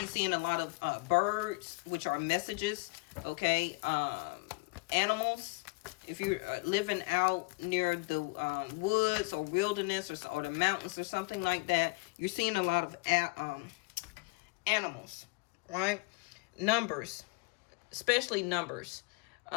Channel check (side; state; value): right; quieter; 27.4 dB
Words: seeing a lot of birds, which are messages. Okay, animals. If you're living out near the woods or wilderness or the mountains or something like that, you're seeing a lot of animals, right? Numbers, especially numbers.